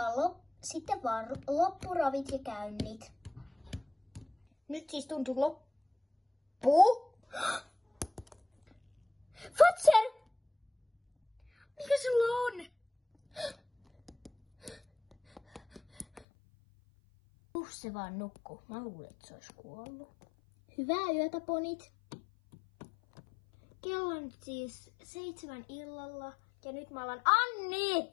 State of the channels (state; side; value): drops out; right; at 16.2 s